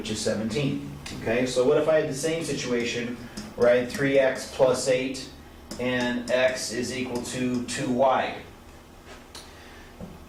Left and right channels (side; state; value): both; identical; correlation 1.00